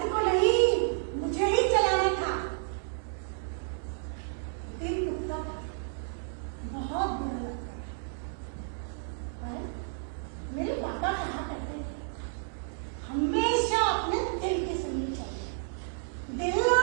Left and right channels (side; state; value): left; silent; digital silence